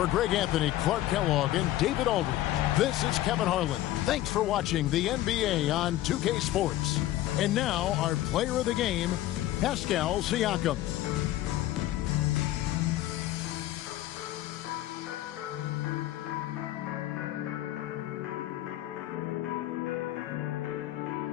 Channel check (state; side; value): quieter; right; 14.6 dB